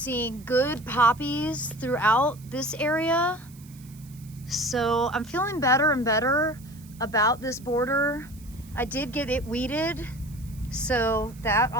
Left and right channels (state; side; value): noise; right; hiss, 24 dB below the sound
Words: good poppies throughout this area. So I'm feeling better and better about this border. I did get it weeded, so that